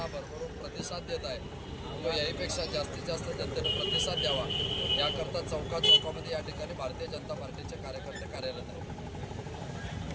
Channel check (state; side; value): identical; both; correlation 1.00